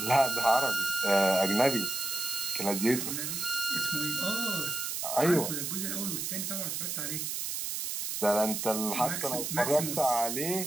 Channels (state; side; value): noise; right; hiss, 3 dB below the sound